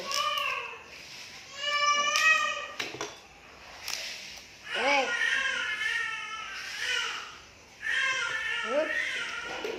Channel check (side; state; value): both; identical; correlation 1.00